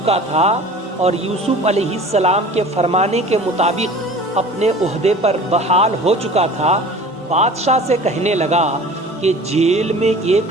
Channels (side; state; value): both; normal; correlation 0.42